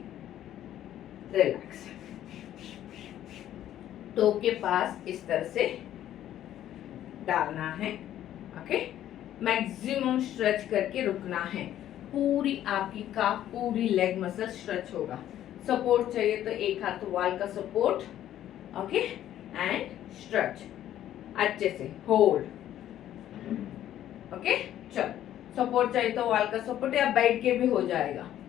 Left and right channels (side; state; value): right; quieter; 11.9 dB